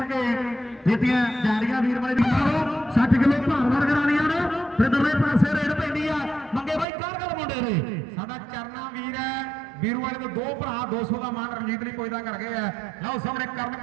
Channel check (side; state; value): left; drops out; at 6.9 s